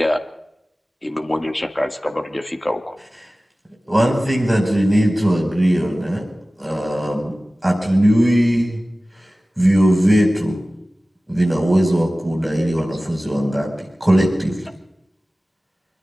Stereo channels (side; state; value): both; normal; correlation 0.97